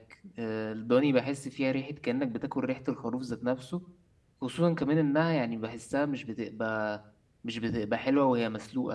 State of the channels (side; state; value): both; identical; correlation 1.00